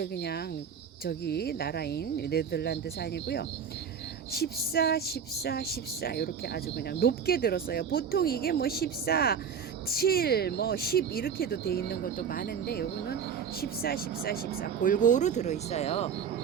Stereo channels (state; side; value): quieter; left; 7.0 dB